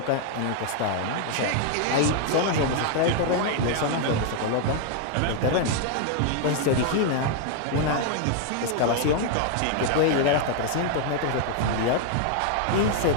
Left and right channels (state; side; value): different; both; correlation 0.00